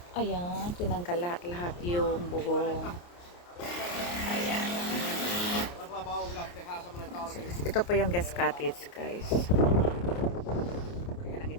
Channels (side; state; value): right; late; 28 ms